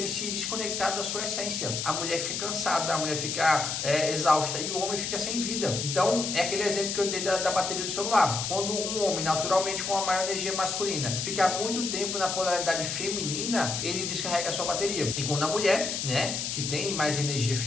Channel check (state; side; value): noise; left; hiss, 2 dB below the sound